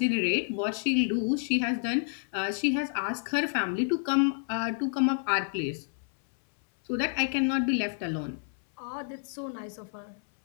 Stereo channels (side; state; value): right; silent; 58 dB below the other